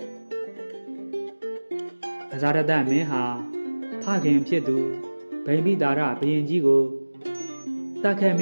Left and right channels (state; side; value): inverted; both; correlation -1.00